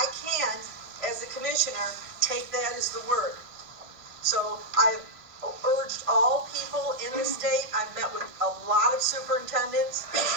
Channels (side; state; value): left; late; 1.5 ms